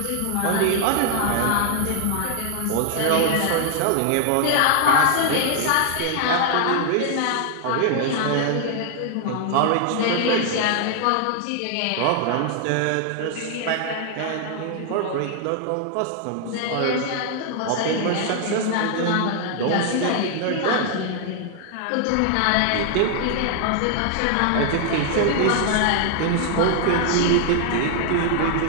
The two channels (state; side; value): different; both; correlation 0.00